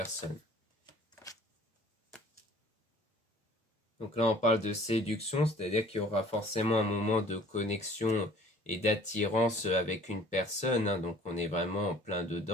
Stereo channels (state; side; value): normal; both; correlation 0.52